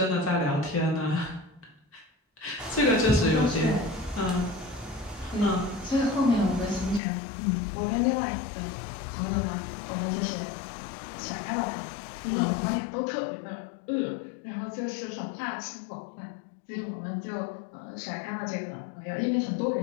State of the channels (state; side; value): drops out; right; at 7.0 s